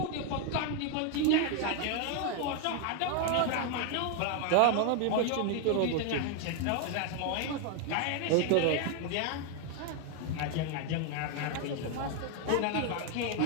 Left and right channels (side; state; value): both; different; correlation 0.01